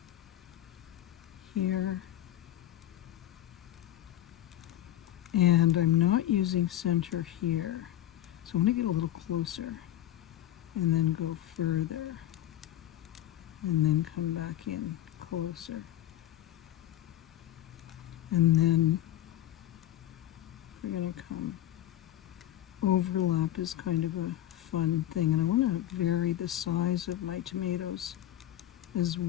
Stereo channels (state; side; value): quieter; right; 12.9 dB